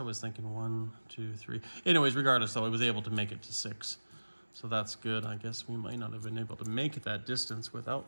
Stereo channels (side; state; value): both; inverted; correlation -1.00